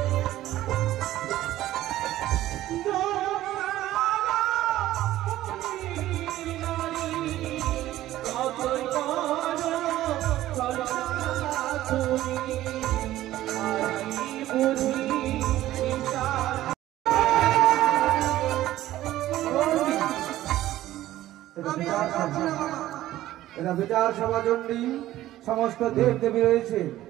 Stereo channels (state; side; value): quieter; left; 14.5 dB